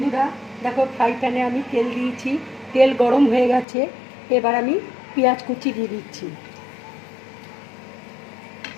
দেখো, ফ্রাই প্যানে আমি তেল দিয়েছি, তেল গরম হয়ে গেছে। এবার আমি পেঁয়াজ কুচি দিয়ে দিচ্ছি।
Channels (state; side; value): drops out; right; at 3.7 s